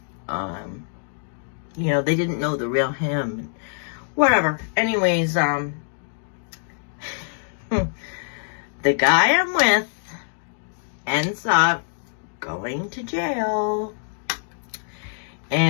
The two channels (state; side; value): silent; right; digital silence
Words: you know, they didn't know the real him. Whatever. Anyways, the guy I'm with ends up going to jail.